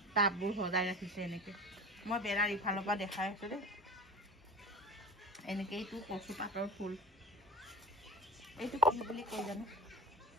টাববোৰ সজাই ৰাখিছে। এনেকৈ মই বেৰাৰ ইফালৰ পৰা দেখাই আছোঁ দেই। এনেকৈ এইটো কচু পাতৰ ফুল, এইটো কি বুলি কয় জানো,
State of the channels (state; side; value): normal; both; correlation 0.33